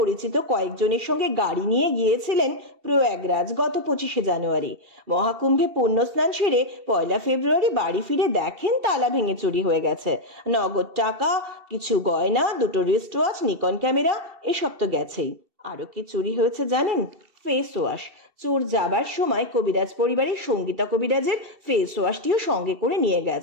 কয়েকজনের সঙ্গে গাড়ি নিয়ে গিয়েছিলেন প্রয়াগরাজ গত 25শে জানুয়ারি। মহাকুম্ভে পুণ্যস্নান সেরে 1 ফেব্রুয়ারি বাড়ি ফিরে দেখেন তালা ভেঙে চুরি হয়ে গেছে। নগদ টাকা, কিছু গয়না, 2টো রিস্ট ওয়াচ, নিকন ক্যামেরা, এসব তো গেছেই। আরো কি চুরি হয়েছে জানেন? Face wash. চোর যাবার সময় কবিরাজ পরিবারের সঙ্গীতা কবিরাজের ফেস ওয়াশটিও সঙ্গে করে নিয়ে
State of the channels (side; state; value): left; late; 2.7 ms